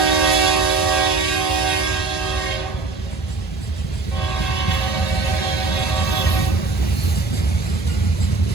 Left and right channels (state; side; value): quieter; left; 3.9 dB